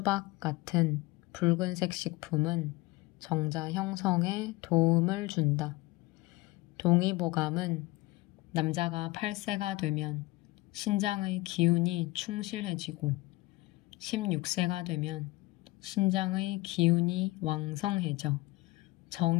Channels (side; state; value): right; quieter; 20.7 dB